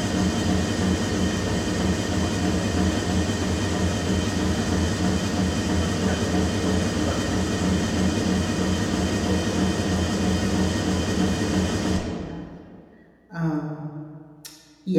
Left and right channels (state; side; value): identical; both; correlation 1.00